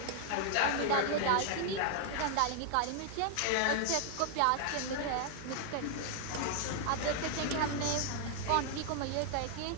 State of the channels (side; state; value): both; different; correlation 0.00